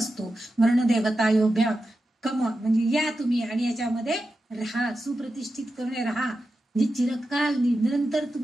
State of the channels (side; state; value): both; normal; correlation 0.91